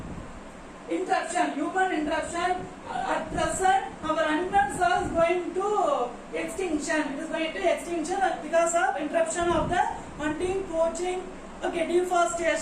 interruption at present our animals are going to extinction. It is going to extinction because of interruption of the hunting, poaching, okay,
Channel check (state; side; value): identical; both; correlation 1.00